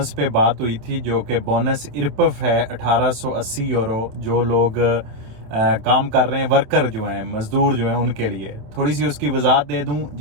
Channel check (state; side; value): late; left; 27 ms